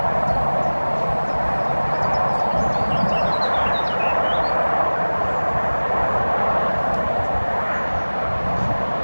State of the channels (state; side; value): inverted; both; correlation -1.00